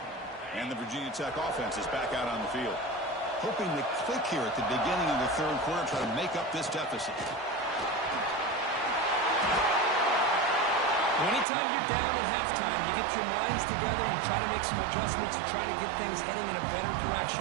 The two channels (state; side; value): drops out; left; at 11.5 s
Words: And the Virginia Tech offense is back out on the field. Hoping to click here at the beginning of the third quarter, try to make up this deficit. Anytime you're down at halftime, you get your minds together, you try to make some adjustments, you try to get things heading in a better direction.